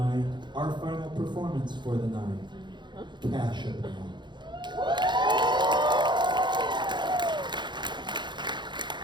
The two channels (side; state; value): left; late; 0.22 ms